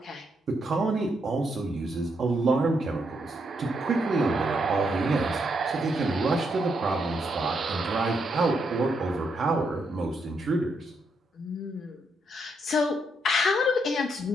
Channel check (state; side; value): normal; both; correlation 0.78